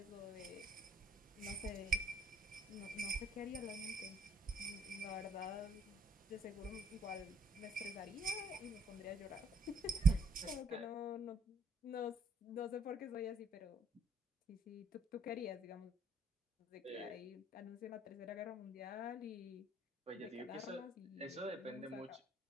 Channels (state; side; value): normal; both; correlation 0.66